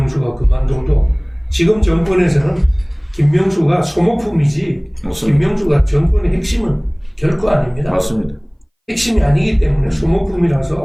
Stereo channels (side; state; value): both; identical; correlation 1.00